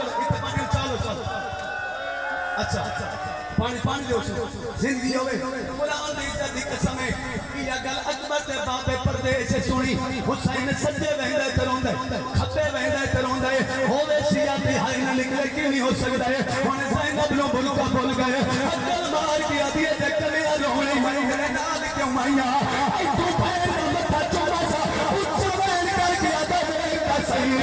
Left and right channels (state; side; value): identical; both; correlation 1.00